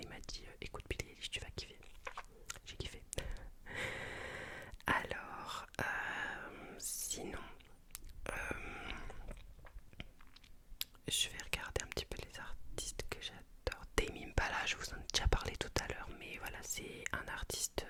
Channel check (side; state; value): both; identical; correlation 1.00